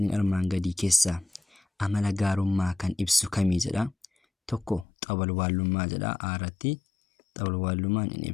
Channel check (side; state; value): right; drops out; at 4.9 s